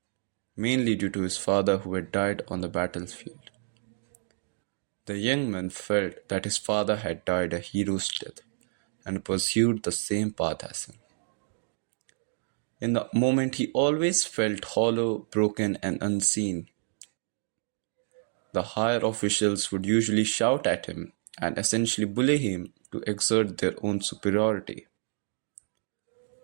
mainly due to his father who had died on the battlefield. The young man felt that his father had died a hero's death and pursued the same path as him. In the moment, he always felt hollow, broken, and unseen. The higher officials would usually shout at him and essentially bully him to exert their own superiority.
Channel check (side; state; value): left; silent; digital silence